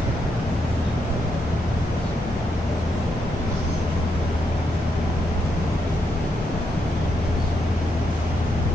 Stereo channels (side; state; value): both; normal; correlation 0.80